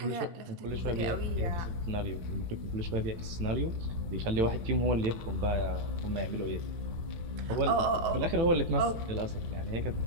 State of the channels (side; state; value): left; late; 18 ms